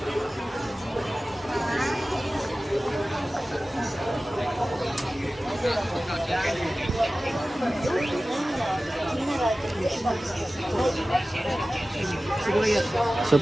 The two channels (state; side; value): normal; both; correlation 0.96